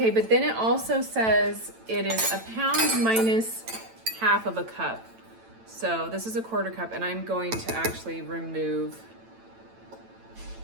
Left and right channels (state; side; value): late; left; 9.0 ms